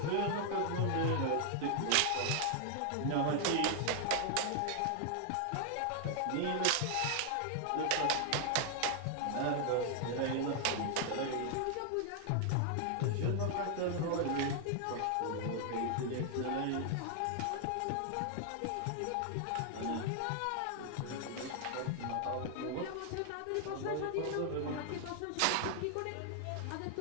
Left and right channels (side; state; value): both; different; correlation 0.00